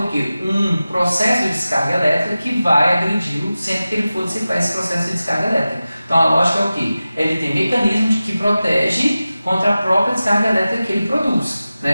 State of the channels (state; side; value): inverted; both; correlation -0.95